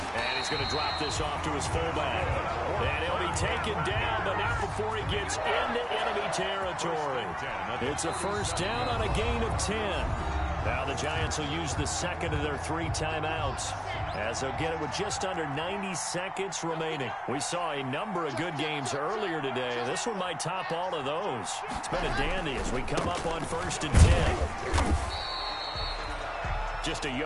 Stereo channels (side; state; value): both; identical; correlation 1.00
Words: And he's going to drop this off to his fullback. And he'll be taken down, but not before he gets into enemy territory. It's a first down on a gain of 10. Now the Giants will use the 2nd of their 3 timeouts as they'll get it with just under 90 seconds remaining. We saw a number of good games earlier today. This one might top all of those. It's been a dandy as we come up on 1st and 10. Just a